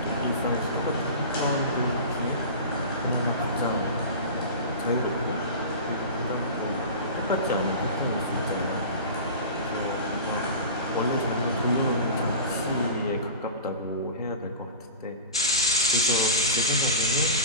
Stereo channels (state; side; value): inverted; both; correlation -0.32